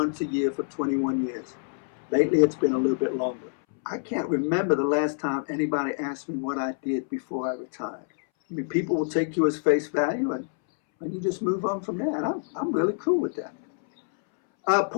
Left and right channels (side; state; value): right; silent; 61 dB below the other